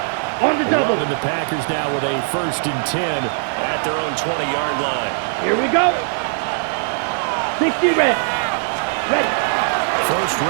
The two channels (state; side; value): silent; left; 59 dB below the other